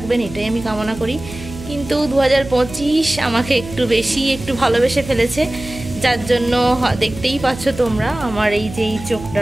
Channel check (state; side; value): noise; right; hum, 13 dB below the sound